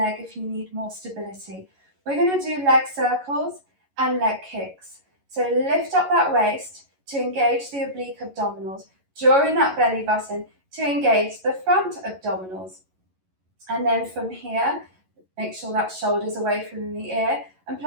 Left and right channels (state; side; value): late; left; 11 ms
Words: if you need more stability. We're going to do leg circles and leg kicks. So lift up that waist to engage the oblique abdominals. Draw in that belly button to engage the front abdominals. And then from here, make sure that shoulder's away from the ear and